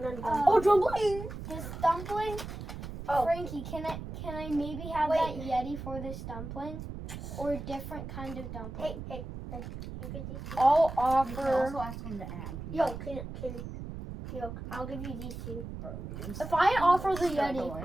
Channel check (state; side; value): noise; right; rumble, 9 dB below the sound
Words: on Oh, dumpling! This dumpling. Oh. Frankie, can I maybe have that Yeti for this dumpling, or a different kind of dumpling? Hey. You get these two. I'll You can offer. also ask him to add. I'll give you these two. If I offer the